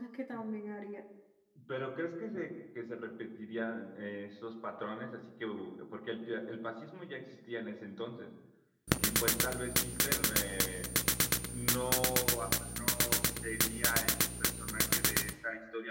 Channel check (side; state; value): both; identical; correlation 1.00